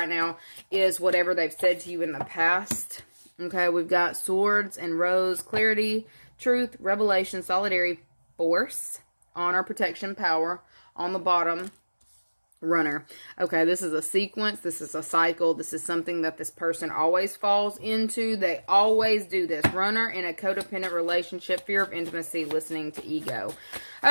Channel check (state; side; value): inverted; both; correlation -1.00